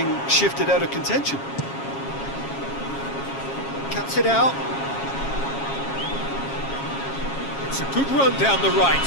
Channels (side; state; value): right; late; 7.3 ms